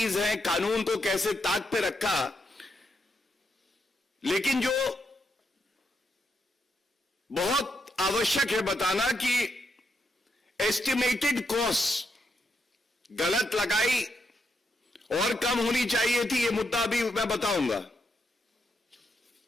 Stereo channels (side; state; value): both; normal; correlation 0.81